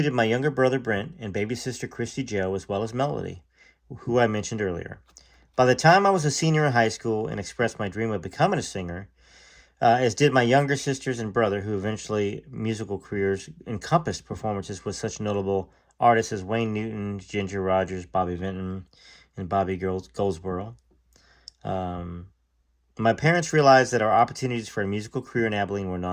my younger brother Brent and baby sister Christy Joe, as well as Melody, who I mentioned earlier. By the time I was a senior in high school and expressed my dream of becoming a singer, as did my younger sisters and brother, who eventually musical careers encompassed performances with such notable artists as Wayne Newton, Ginger Rogers, Bobby Vinton, and Bobby Goldsboro. My parents realized that our opportunities for a musical career in Abilene were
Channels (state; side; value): identical; both; correlation 1.00